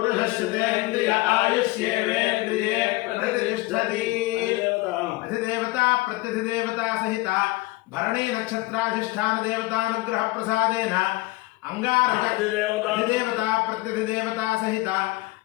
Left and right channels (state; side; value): quieter; right; 21.1 dB